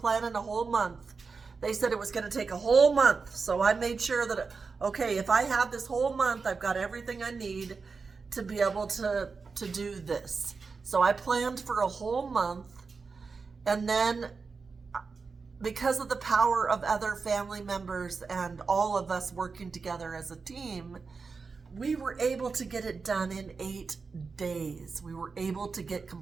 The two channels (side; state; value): left; quieter; 4.8 dB